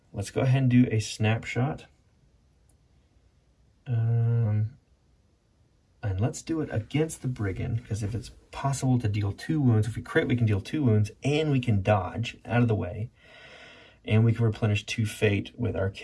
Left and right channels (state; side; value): identical; both; correlation 1.00